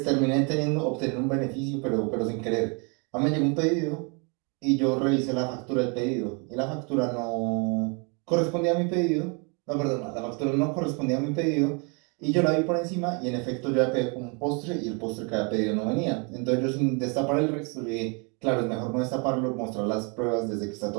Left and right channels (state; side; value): quieter; left; 34.1 dB